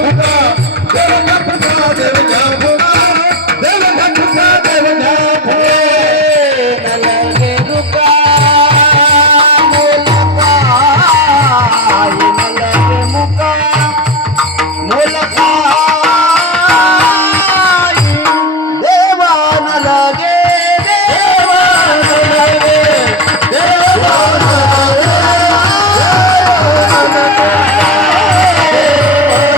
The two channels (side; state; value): both; normal; correlation 0.19